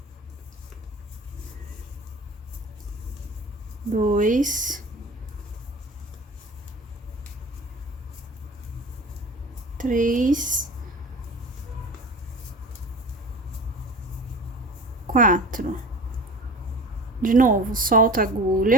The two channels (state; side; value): normal; both; correlation 0.37